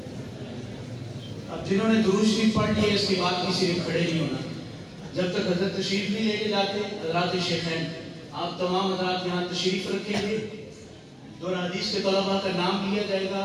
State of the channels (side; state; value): both; identical; correlation 1.00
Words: اب جنہوں نے درود شریف پڑھ لیے اس کے بعد کسی نے کھڑے نہیں ہونا جب تک حضرت تشریف نہیں لے کے جاتے۔ حضرات شیخین، آپ تمام حضرات یہاں تشریف رکھیں گے، دور حدیث کے طلباء کا نام لیا جائے گا،